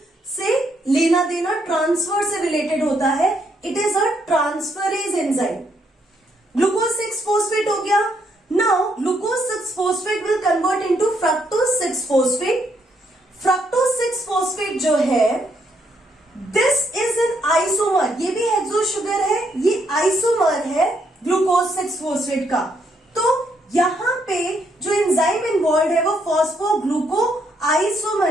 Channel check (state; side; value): normal; both; correlation 0.74